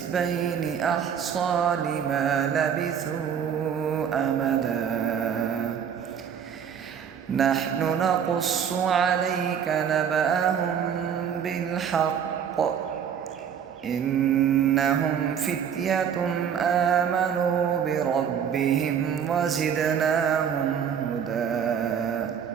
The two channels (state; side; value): quieter; left; 8.0 dB